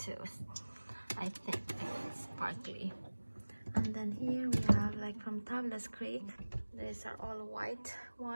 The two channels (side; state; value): both; inverted; correlation -1.00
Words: I think it's sparkly. And then here we have like from Tablas Creek. These are all white